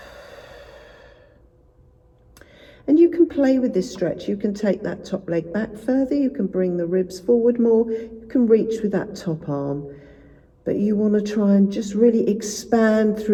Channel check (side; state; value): both; identical; correlation 1.00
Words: And you can play with this stretch. You can take that top leg back further. You can bring the ribs forward more. You can reach with that top arm. But you want to try and just really expand